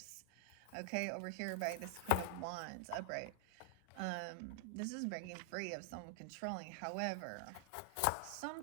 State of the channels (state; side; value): different; both; correlation 0.00